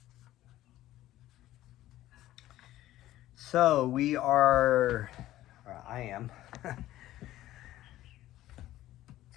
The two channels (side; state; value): right; quieter; 14.7 dB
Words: So we are, or I am,